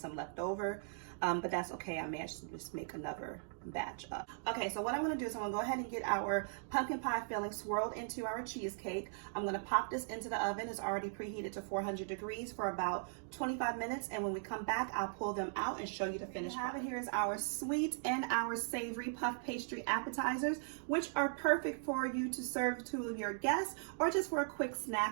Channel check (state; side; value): silent; left; digital silence